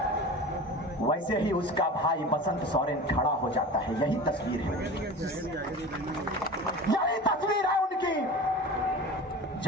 वैसे ही उसका भाई बसंत सोरेन खड़ा हो जाता है। यही तस्वीर है, यही तस्वीर है उनकी।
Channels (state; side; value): normal; both; correlation 0.34